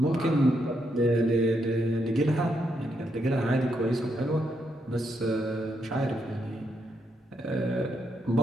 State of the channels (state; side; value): normal; both; correlation 0.79